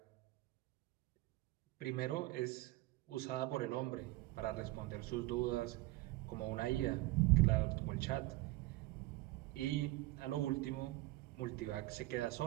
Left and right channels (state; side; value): quieter; left; 19.3 dB